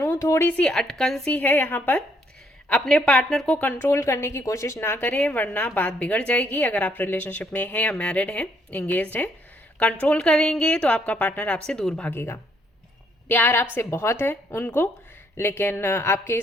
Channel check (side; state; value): both; normal; correlation 0.70